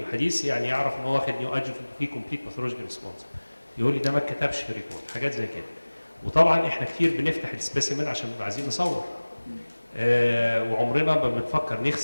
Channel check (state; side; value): inverted; both; correlation -1.00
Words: يعني يعرف ان هو واخد نيو ادجوفنت فيه كومبليت باثولوجيكال ريسبونس. يقول لي ده ما اتكتبش في الريبورت، حاجات زي كده. وطبعا احنا كتير بنفتح السبيسيمن عشان بنبقى عايزين نصور، وعمرنا ما بنفكر